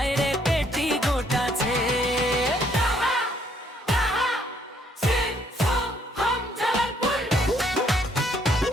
রে পেটিকোট আছে।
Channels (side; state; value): both; normal; correlation 0.67